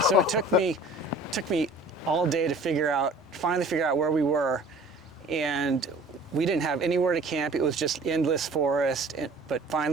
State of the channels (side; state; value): both; normal; correlation 0.49